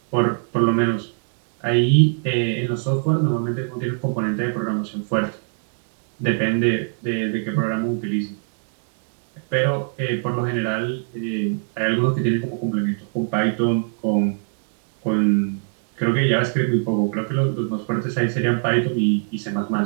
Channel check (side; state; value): left; silent; 58 dB below the other